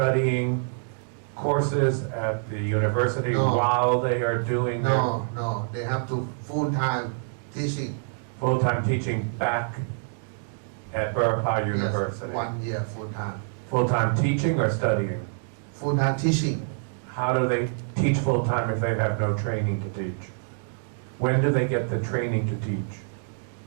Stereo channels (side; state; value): left; silent; digital silence